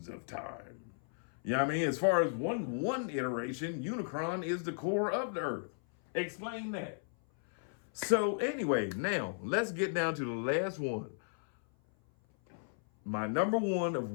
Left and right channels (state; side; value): silent; right; 55 dB below the other